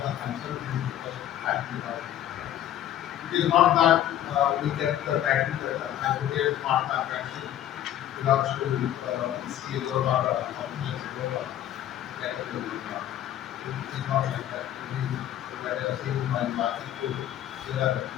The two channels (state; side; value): quieter; right; 11.8 dB